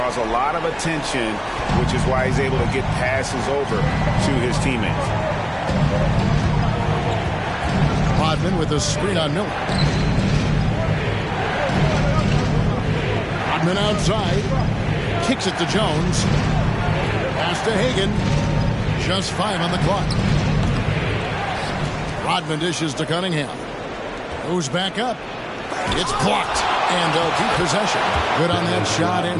a lot of attention, which is why he's able to get passes over to his teammates. Rodman with a screen on Miller. Rodman outside. Kicks it to Jones. Pass to Hagan. Just 5 on the clock. Rodman dishes to Cunningham. Goes back up. It's blocked. And they'll keep possession. Good on that shot.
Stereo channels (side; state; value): both; identical; correlation 1.00